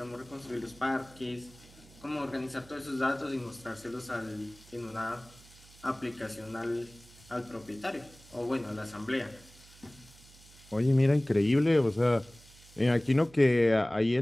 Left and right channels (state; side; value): noise; right; hum, 23 dB below the sound